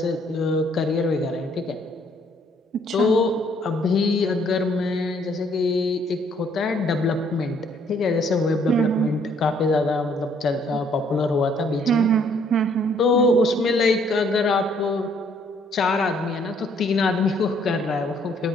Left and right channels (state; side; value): normal; both; correlation 0.65